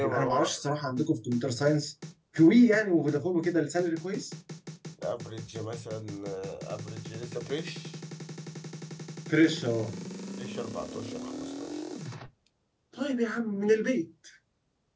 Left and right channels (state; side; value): identical; both; correlation 1.00